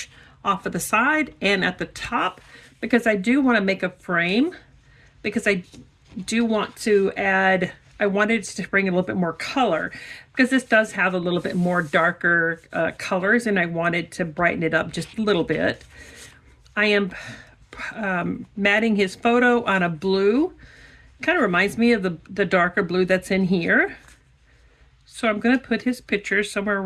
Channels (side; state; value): both; identical; correlation 1.00